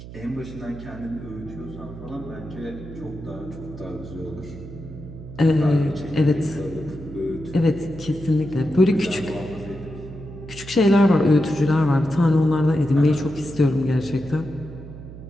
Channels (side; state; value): right; noise; hum, 14 dB below the sound